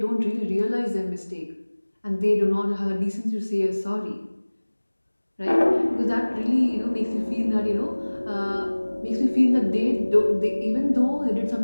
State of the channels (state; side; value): inverted; both; correlation -1.00